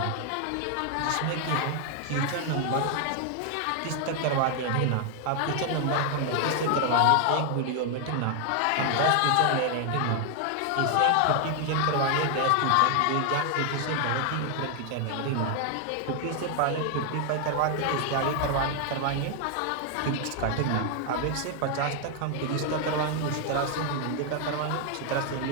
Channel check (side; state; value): both; different; correlation 0.00